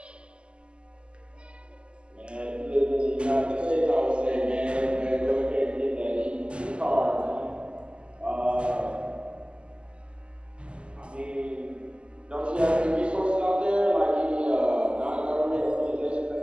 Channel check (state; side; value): late; left; 0.052 ms